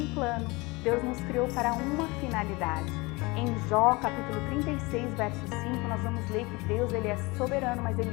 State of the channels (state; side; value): quieter; right; 24.5 dB